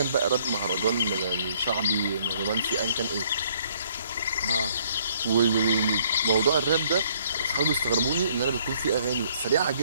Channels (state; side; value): inverted; both; correlation -0.64